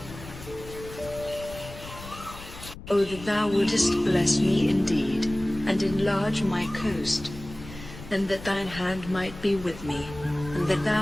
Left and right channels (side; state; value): left; noise; rumble, 14 dB below the sound